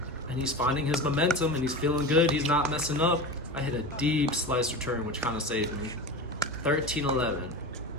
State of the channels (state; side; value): normal; both; correlation 0.27